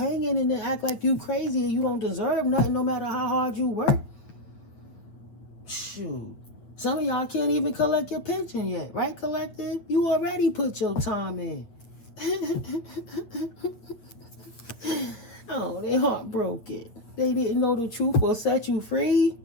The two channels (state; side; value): late; right; 8.7 ms